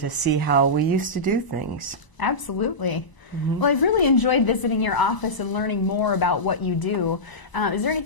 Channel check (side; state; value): right; late; 1.0 ms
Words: see how we used to do things. Absolutely. Well, I've really enjoyed visiting your office and learning more about what you do. Is there